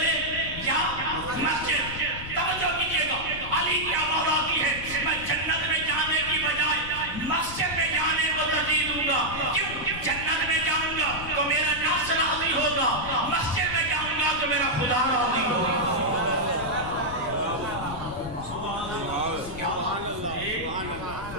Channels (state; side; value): noise; left; rumble, 12 dB below the sound